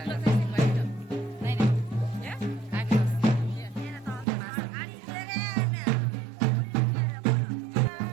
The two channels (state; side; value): drops out; left; at 4.2 s